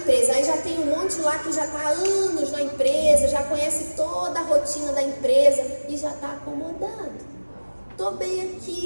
aí já tem um monte lá que já está há anos na empresa, já conhece toda a rotina da empresa e já está acomodado. Estou bem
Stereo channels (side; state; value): both; inverted; correlation -1.00